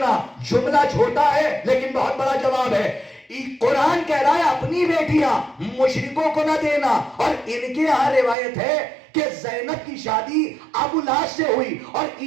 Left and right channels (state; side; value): drops out; left; at 8.3 s